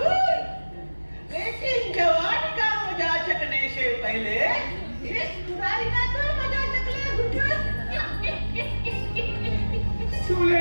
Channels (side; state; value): both; inverted; correlation -1.00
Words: लेकिन जवानी का मजा चखने से पहले इस बुराई का तो मजा चख ले हुजूर।